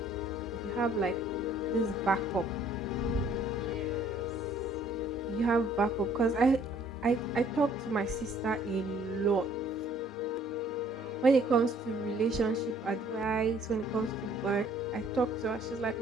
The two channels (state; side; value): normal; both; correlation 0.59